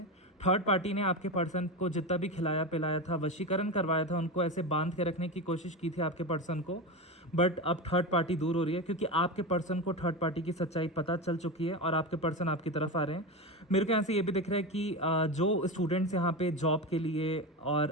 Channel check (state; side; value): normal; both; correlation 0.19